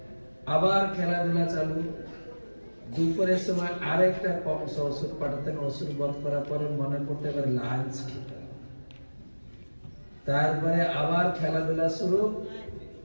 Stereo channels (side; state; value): both; inverted; correlation -1.00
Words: আবার খেলাধুলা চালু। দুপুরের সময় আরেকটা কংস ওষুধ পাঠাতেন। ওষুধ বধ করার পরে মনে পড়তে এবার লাঞ্চ খেতে, তারপরে আবার খেলাধুলা শুরু।